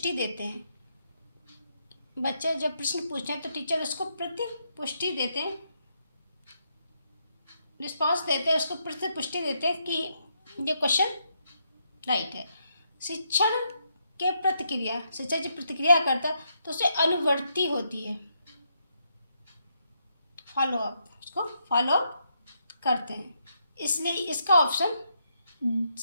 देते हैं। बच्चे जब प्रश्न पूछते हैं तो टीचर उसको प्रतिपुष्टि देते हैं, रिस्पॉन्स देते हैं, उसको प्रतिपुष्टि देते हैं कि ये क्वेश्चन राइट है। शिक्षण के प्रतिक्रिया, शिक्षक जब प्रतिक्रिया करता है तो उसे अनुवर्ती होती है, फॉलो अप, उसको फॉलो अप करते हैं। इसलिए इसका ऑप्शन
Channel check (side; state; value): both; inverted; correlation -0.78